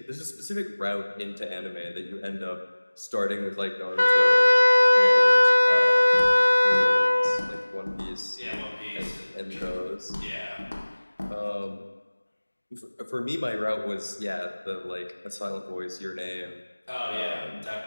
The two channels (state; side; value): inverted; both; correlation -1.00